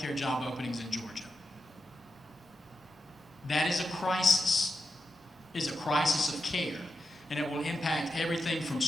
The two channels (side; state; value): both; normal; correlation 0.88